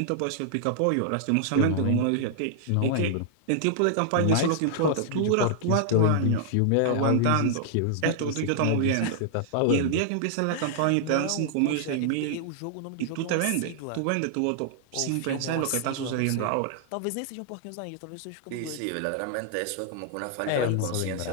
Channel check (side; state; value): both; different; correlation -0.01